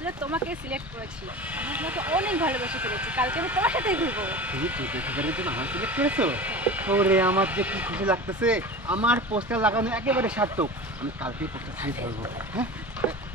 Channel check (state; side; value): normal; both; correlation 0.33